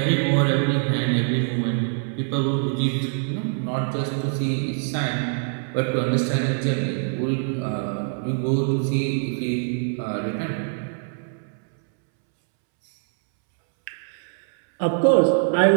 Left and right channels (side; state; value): left; silent; 63 dB below the other